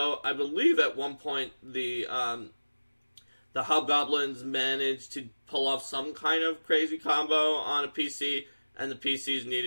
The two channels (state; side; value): inverted; both; correlation -1.00